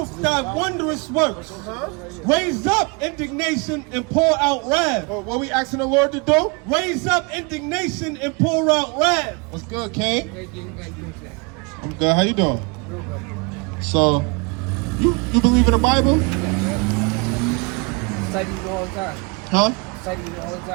thy wondrous works. Raise up indignation and pour out wrath. What we asking the Lord to do? Raise up indignation and pour out wrath. What's good, King? I'm good. How you doing? So, you believe in the Bible? Study it all the time. Huh? Study it all the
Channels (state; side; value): quieter; left; 31.0 dB